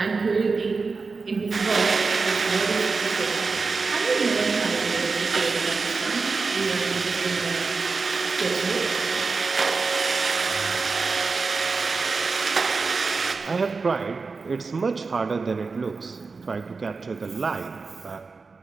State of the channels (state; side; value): quieter; left; 4.4 dB